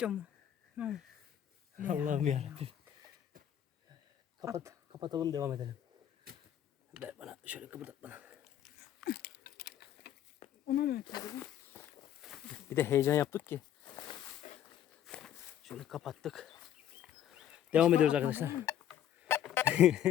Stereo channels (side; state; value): right; quieter; 10.7 dB